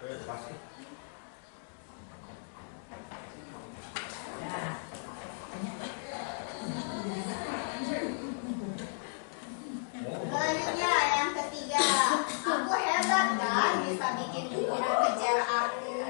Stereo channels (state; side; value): silent; right; digital silence